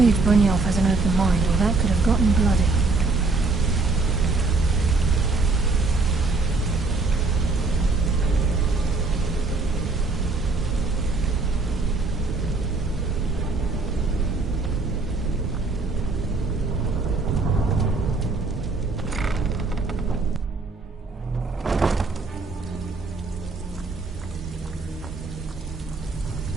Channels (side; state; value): left; quieter; 3.7 dB